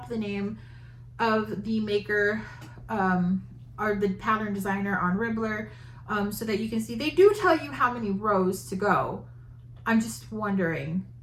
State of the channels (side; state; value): both; identical; correlation 1.00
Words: the name of the maker or the pattern designer on Ribbler, so that you can see. They do tell you how many rows to go. I'm just wondering